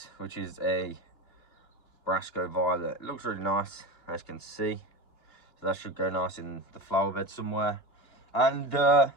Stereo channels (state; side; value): late; right; 2.9 ms